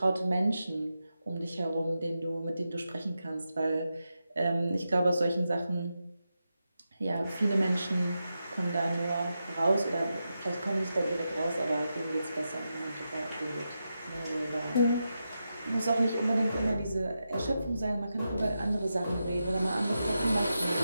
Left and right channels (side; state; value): both; inverted; correlation -0.88